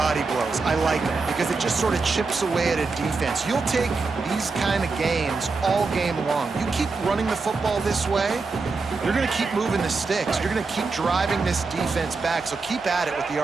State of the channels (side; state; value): left; quieter; 4.2 dB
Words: blows. I like them because it just sort of chips away at a defense. You'll take these kind of games all game long. You keep running the football this way, you're going to keep moving the sticks. You're going to keep driving this defense back, so keep at it with the